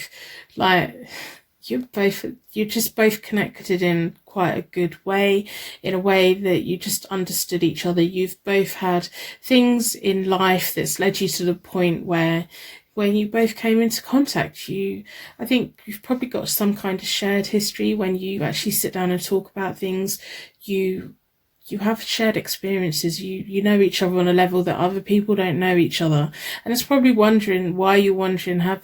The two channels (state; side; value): identical; both; correlation 1.00